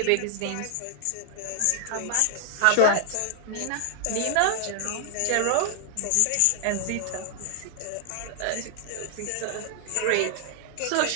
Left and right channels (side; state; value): both; different; correlation -0.01